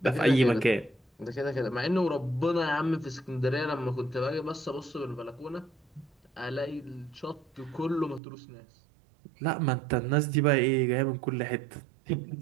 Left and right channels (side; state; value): left; drops out; at 8.2 s